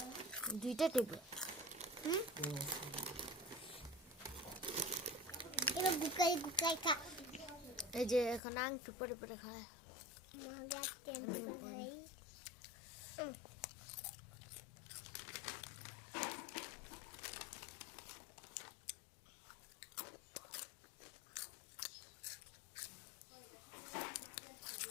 দুইটা টেবিল এবার গুকাই গুকাই খা এই যে এখন আংটু পরে পরে খায়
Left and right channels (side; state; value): right; drops out; at 8.4 s